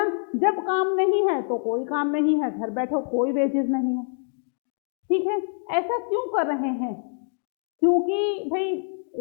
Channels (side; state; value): right; silent; digital silence